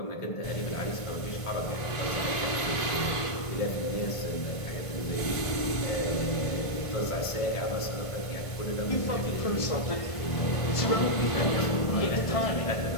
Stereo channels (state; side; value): late; right; 1.5 ms